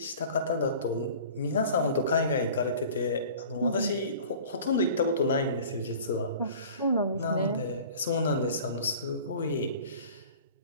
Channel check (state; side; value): inverted; both; correlation -0.43